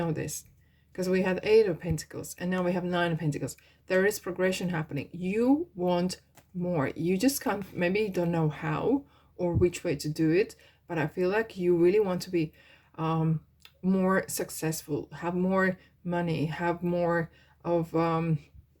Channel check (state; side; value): identical; both; correlation 1.00